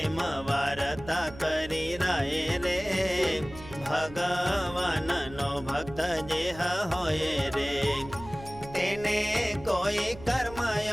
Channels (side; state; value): right; noise; hum, 16 dB below the sound